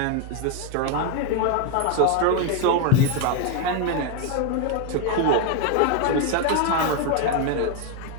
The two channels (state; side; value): different; both; correlation 0.01